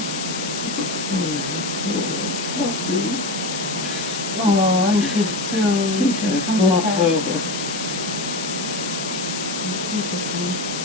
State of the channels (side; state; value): left; noise; hiss, 5 dB below the sound